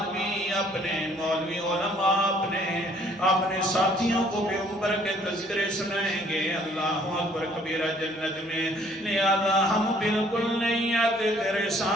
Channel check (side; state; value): both; normal; correlation 0.60